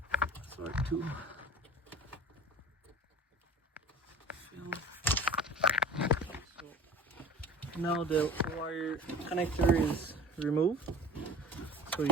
tool. So now the wire connector is removed. So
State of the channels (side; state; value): both; normal; correlation 0.40